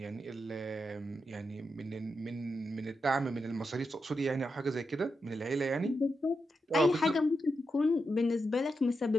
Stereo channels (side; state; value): both; normal; correlation 0.86